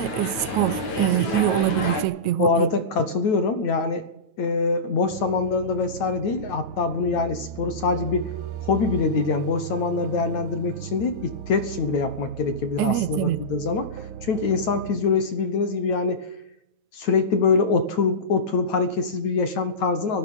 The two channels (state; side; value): late; right; 9.2 ms